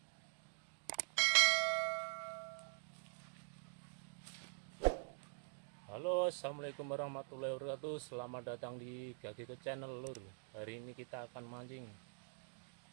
Halo, assalamualaikum warahmatullahi wabarakatuh. Selamat datang di Gagiko Channel lur. Hari ini kita akan mancing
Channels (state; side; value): silent; left; digital silence